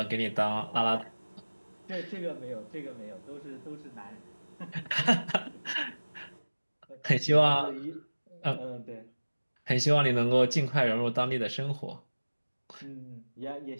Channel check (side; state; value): both; inverted; correlation -1.00